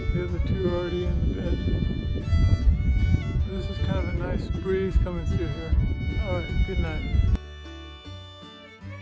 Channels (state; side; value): identical; both; correlation 1.00